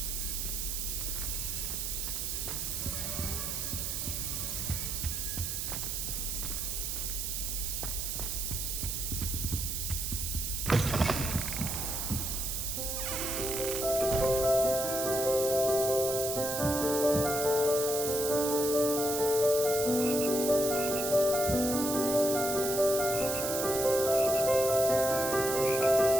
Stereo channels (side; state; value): right; noise; hiss, 2 dB below the sound